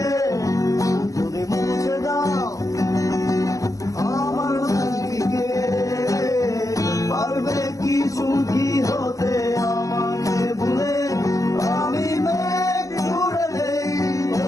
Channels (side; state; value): right; late; 0.16 ms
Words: সুখী হতে আমাকে ভুলে আমি মেঘ উড়ে দেই